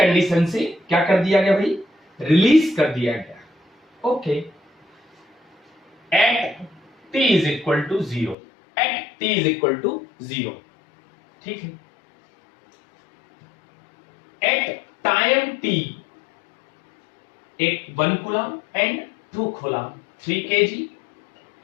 से क्या कर दिया गया भाई, रिलीज कर दिया गया, okay. At t is equal to 0, at t is equal to 0, ठीक है। एट टाइम t, एक 1 coulomb and 2 coulomb, 3 kg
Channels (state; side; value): drops out; right; at 8.3 s